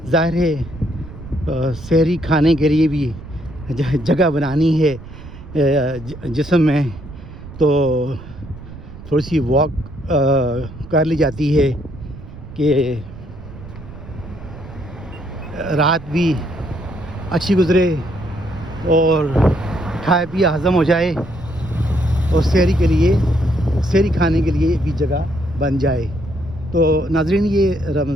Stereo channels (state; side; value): noise; right; rumble, 15 dB below the sound